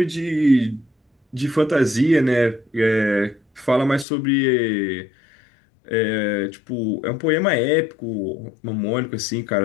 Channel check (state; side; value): drops out; right; at 4.0 s